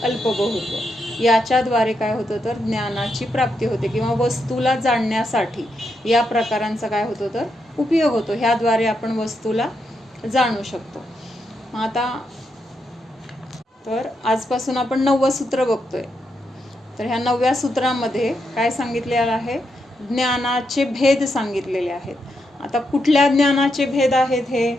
अल्पबहुत्व याच्याद्वारे काय होतं तर ज्ञानाची प्राप्ती होते किंवा वस्तूला जाणण्यासाठी या प्रकारांचा काय होतो तर उपयोग होतो. ह्याद्वारे आपण वस्तूला जाणू शकतो. आता तर आजपासून आपण 9वं सूत्र बघतोय. तर ह्या 9व्या सूत्रामध्ये काय सांगितलेलं आहे? ज्ञानाचे भेद सांगितलेले आहेत. आता कुठल्या ज्ञानाचे भेद आहेत हे?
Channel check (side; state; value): both; normal; correlation 0.82